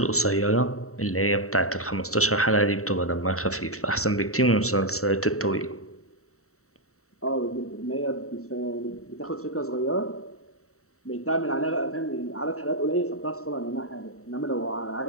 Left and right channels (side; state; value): right; late; 0.64 ms